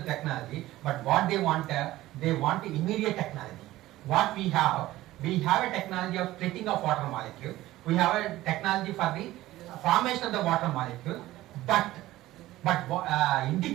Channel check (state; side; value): quieter; left; 16.2 dB